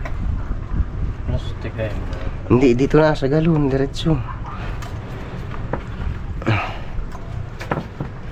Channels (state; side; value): identical; both; correlation 1.00